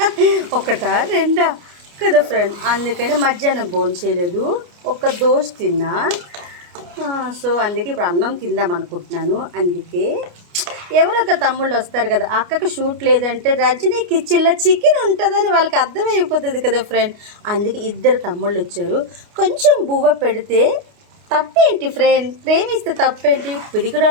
ఒకటా రెండా కదా ఫ్రెండ్, అందుకని మధ్యాహ్నం భోజనం చేయలేదు, ఒక దోశ తిన్నా. సో అందుకే ఇప్పుడు అన్నం తిందాం అనుకుంటున్నాను. అందుకే ఎవరొక తమ్ముళ్ళు వస్తారు కదా, అక్కకు షూట్ లేదంటే రజనీ కిచెన్లో చికెన్ ఉంటుందని వాళ్ళకి అర్థమైపోతుంది కదా ఫ్రెండ్. అందుకే ఇద్దరు తమ్ముళ్ళు వచ్చారు. కొంచెం బువ్వ పెడితే తప్పేంటి ఫ్రెండ్, ప్రేమిస్తే తప్పేంటి,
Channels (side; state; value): left; late; 29 ms